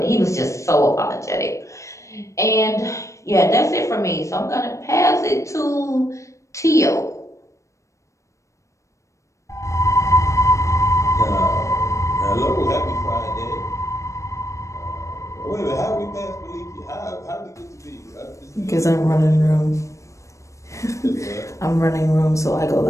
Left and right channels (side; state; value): right; late; 0.15 ms